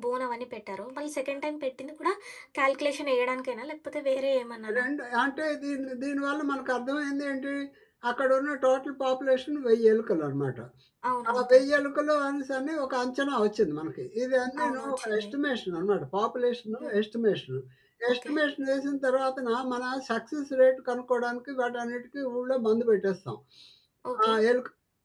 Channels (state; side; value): identical; both; correlation 1.00